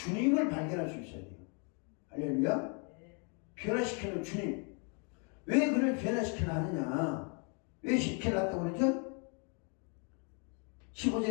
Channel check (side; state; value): right; quieter; 37.3 dB